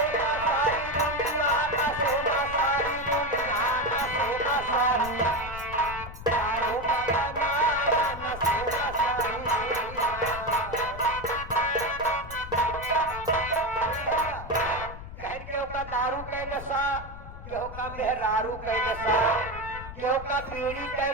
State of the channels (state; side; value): noise; left; rumble, 12 dB below the sound